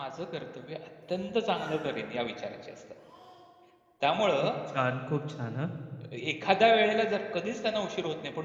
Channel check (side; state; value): both; identical; correlation 1.00